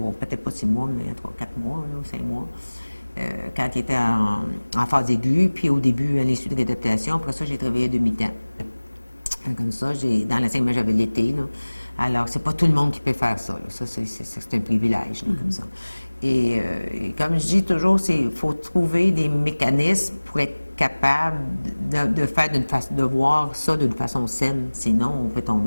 pas 6 mois, mais 3-4 mois, là, 5 mois. Quand il était en phase aiguë, puis au début, à l'Institut de réadaptation. Après ça, j'ai travaillé à demi-temps. Comme ça, dans l'enseignement, j'avais l'été, là. Alors, c'est pas tout le monde qui peut faire ça, là. Ça, c'est un privilège, là, comme ça. Et comme je dis toujours, il faut trouver des mécanismes pour être capable de voir ça d'une façon saine. Sinon, on peut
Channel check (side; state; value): both; inverted; correlation -1.00